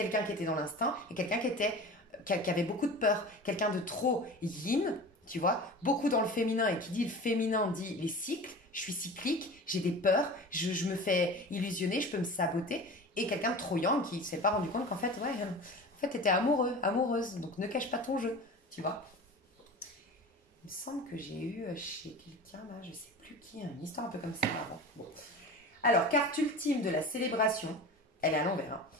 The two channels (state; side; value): normal; both; correlation 0.35